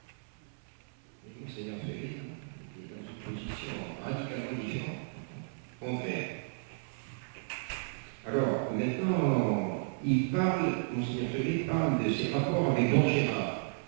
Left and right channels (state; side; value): silent; left; 55 dB below the other